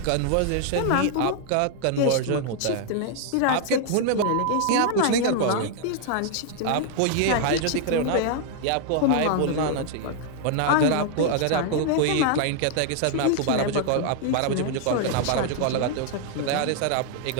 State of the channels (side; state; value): both; different; correlation 0.00